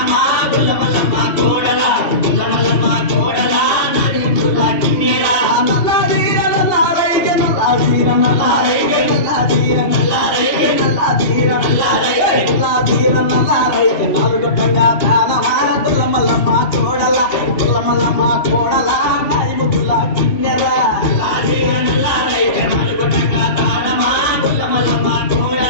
గొల్లమల్లమ్మ కోడల గొల్లమల్లమ్మ కోడల నరిముదుల కిన్నెర నల్లాదీర నల్లారైతే నల్లాదీర నల్లారైతే నల్లాదీర నల్లారైతే నల్లాదీర నల్లారైతే నల్లాదీర నల్లారైతే నలుగుటంగా దానవా గొల్లమల్లమ్మ కోడల గొల్లమల్లమ్మ కోడల నరిముదుల కిన్నెర నల్లాదీర నల్లారైతే నలుగుటంగా దానమా గొల్లమల్లమ్మ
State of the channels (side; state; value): right; late; 2.9 ms